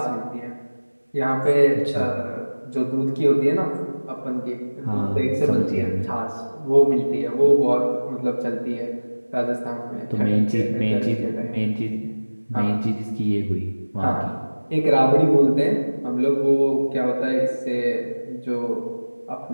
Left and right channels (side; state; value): both; inverted; correlation -1.00